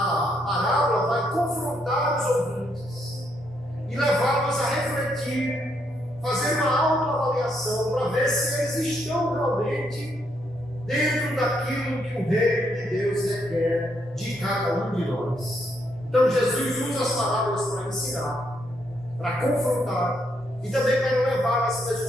parábola vai confrontar os ouvintes e levá-los a refletir, fazer uma autoavaliação para ver se eles estão realmente dentro daquilo que o reino de Deus requer de cada um de nós. Então Jesus usa as parábolas para ensinar, para confrontar e também para levar as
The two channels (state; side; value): normal; both; correlation 0.75